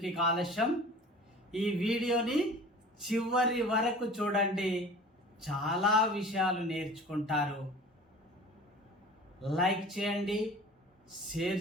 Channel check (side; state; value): both; normal; correlation 0.42